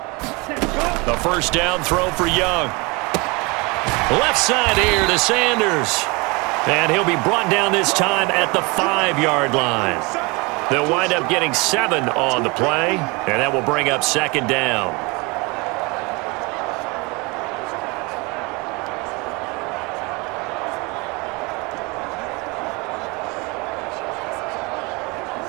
The first down throw for Young. Left side here to Sanders. And he'll be brought down this time at the 5-yard line. They'll wind up getting 7 on the play, and that will bring up 2nd down.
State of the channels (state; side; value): quieter; left; 27.0 dB